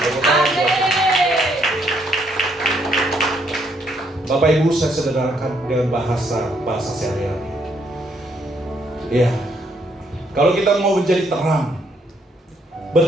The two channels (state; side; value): normal; both; correlation 0.71